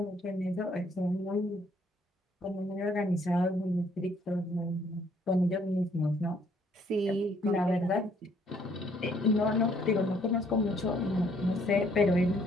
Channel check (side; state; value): both; normal; correlation 0.65